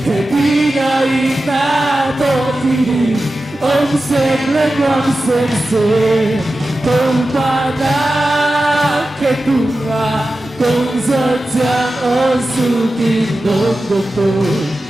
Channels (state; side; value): normal; both; correlation 0.93